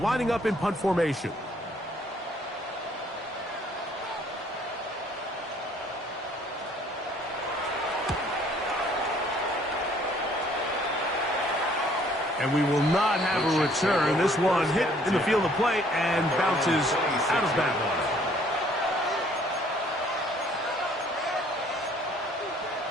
lining up in punt formation. And we will not have a return. This one hit in the field of play and bounces out of bounds.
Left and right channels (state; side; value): normal; both; correlation 0.60